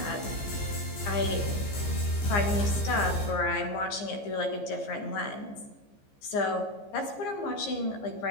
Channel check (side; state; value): right; late; 15 ms